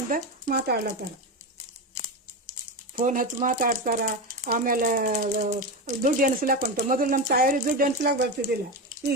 ಮಾತಾಡ್ಲತ್ತಾರ, ಫೋನ್ ಹಚ್ಚಿ ಮಾತಾಡ್ತಾರ. ಆಮೇಲೆ ದುಡ್ಡು ಎಣಿಸ್ಲಾಕ್ ಹೊಂಟ. ಮೊದಲು ನಮ್ಮ ತಾಯಿಯವ್ರಿಗೆ ದುಡ್ಡು ಎಣಿಸ್ಲಾಕ್ ಬರ್ತಿದ್ದಿಲ್ಲ,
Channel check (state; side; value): normal; both; correlation 0.17